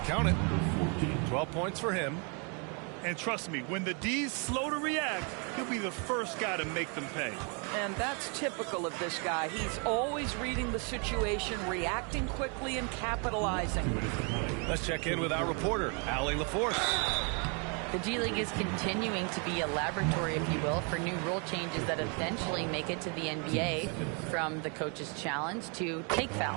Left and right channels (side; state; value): left; quieter; 35.9 dB